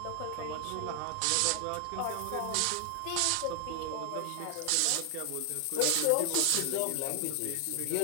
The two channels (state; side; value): different; both; correlation 0.00